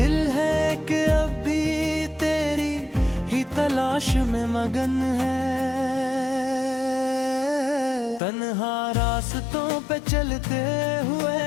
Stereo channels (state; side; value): drops out; right; at 8.2 s